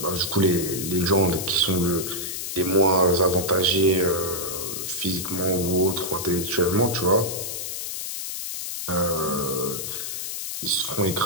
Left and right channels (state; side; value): noise; left; hiss, 5 dB below the sound